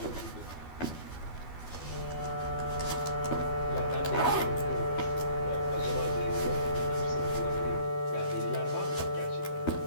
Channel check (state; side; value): late; right; 12 ms